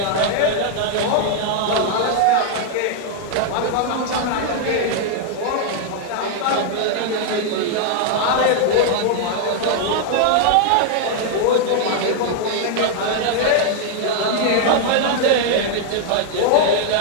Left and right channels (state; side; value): different; both; correlation 0.00